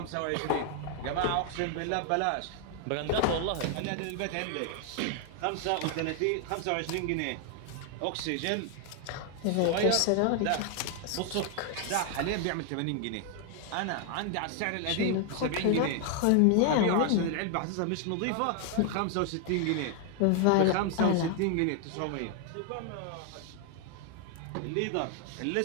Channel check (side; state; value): both; different; correlation 0.00